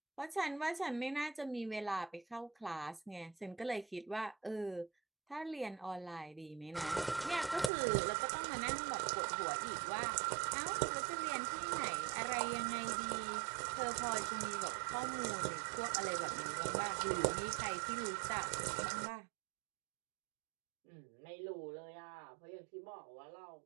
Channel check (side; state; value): left; drops out; at 7.7 s